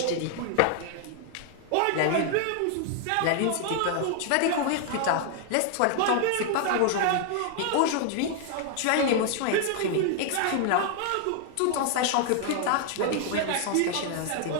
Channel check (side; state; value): both; different; correlation 0.00